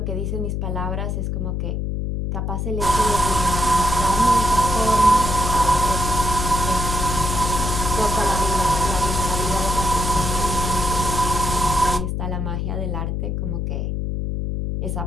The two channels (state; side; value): noise; left; hum, 2 dB below the sound